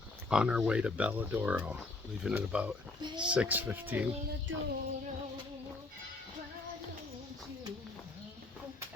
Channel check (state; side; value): quieter; right; 3.3 dB